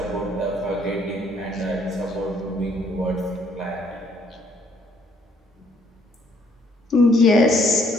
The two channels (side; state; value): both; normal; correlation 0.66